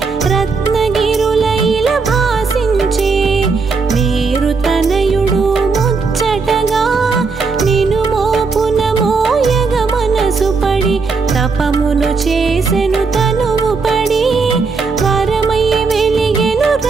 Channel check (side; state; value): left; quieter; 4.6 dB